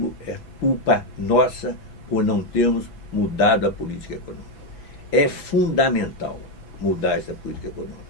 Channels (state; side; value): late; right; 6.0 ms